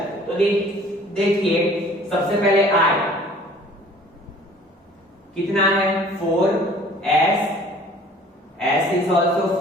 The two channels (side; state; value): both; normal; correlation 0.51